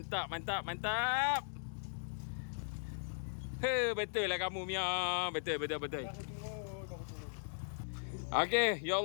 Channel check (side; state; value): right; silent; digital silence